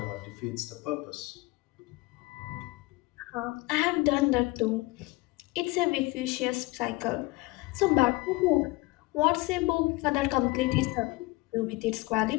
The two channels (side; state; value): right; quieter; 22.5 dB